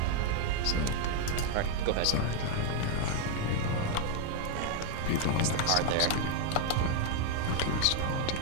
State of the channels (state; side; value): different; both; correlation 0.01